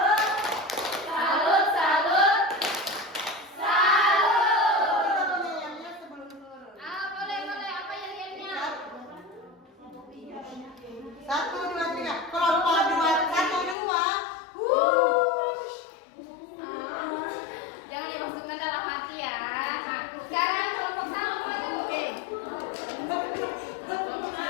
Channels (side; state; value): right; drops out; at 13.8 s